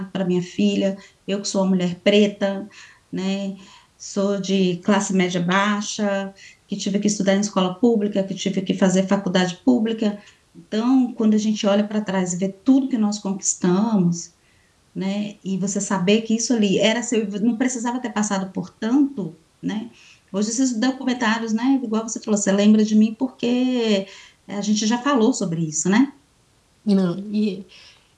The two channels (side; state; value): both; identical; correlation 1.00